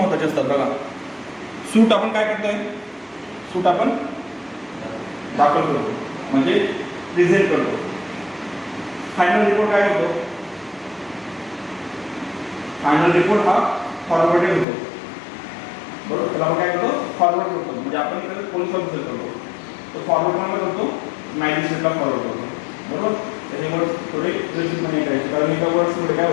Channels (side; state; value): right; drops out; at 14.7 s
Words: असतात बघा. सूट आपण काय करतोय, सूट आपण दाखल करतो म्हणजे प्रेझेंट करतो. फायनल रिपोर्ट काय होतो, फायनल रिपोर्ट हा फॉरवर्डेड होतो, बरोबर. त्याला आपण काय करतो, फॉरवर्ड करतो, म्हणजे आपण इकडे पोलीस ऑफिसर करतो, तो फॉरवर्ड कोणाला करतो, मॅजिस्ट्रेटला फॉरवर्ड करतो, बरोबर. त्याचे वर्ड्स थोडे व्यवस्थितपणे करायचे, कारण एका वर्ड्समध्ये